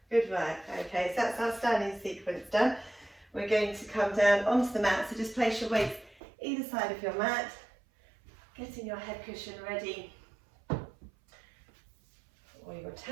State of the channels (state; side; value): drops out; left; at 6.2 s